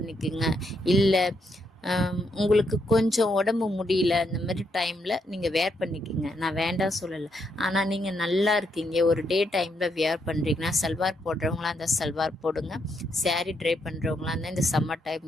இல்லை உங்களுக்கு கொஞ்சம் உடம்பு முடியல அந்த மாதிரி டைமில் நீங்கள் வேர் பண்ணிக்கிங்க, நான் வேண்டாம் சொல்லலை. ஆனால் நீங்கள் நல்லா இருக்கீங்க, ஒரு டே டைமில் வேர் பண்ணுறீங்கன்னா சல்வார் போடுறவங்களா அந்த சல்வார் போடுங்க. சாரீ ட்ரை பண்ணுறவங்களா இருந்தால் இந்த சம்மர்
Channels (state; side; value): normal; both; correlation 0.77